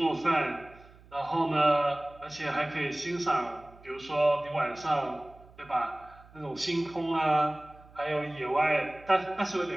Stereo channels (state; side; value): noise; right; hum, 24 dB below the sound